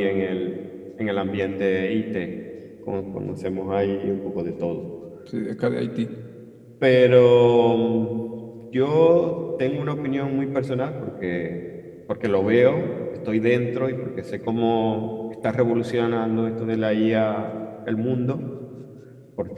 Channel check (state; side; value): identical; both; correlation 1.00